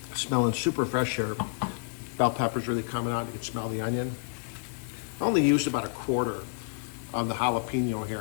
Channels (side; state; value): right; silent; digital silence